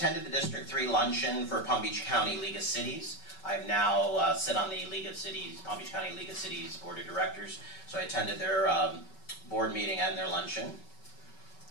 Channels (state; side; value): late; right; 5.3 ms